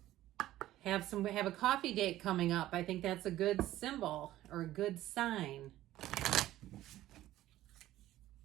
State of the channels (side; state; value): left; quieter; 14.6 dB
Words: Have a coffee date coming up. I think that's a good symbol or a good sign.